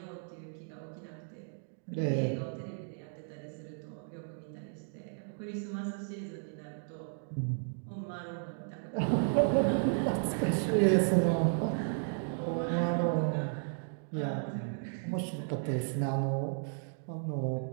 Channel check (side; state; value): left; silent; digital silence